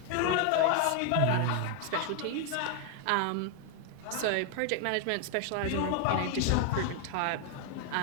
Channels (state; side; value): different; both; correlation 0.00